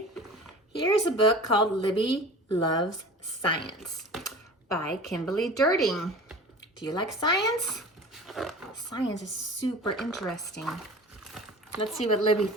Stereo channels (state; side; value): normal; both; correlation 0.39